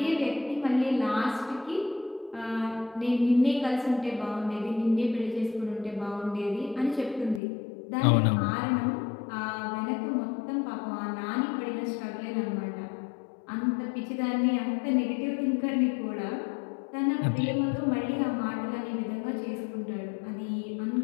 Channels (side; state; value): right; drops out; at 7.4 s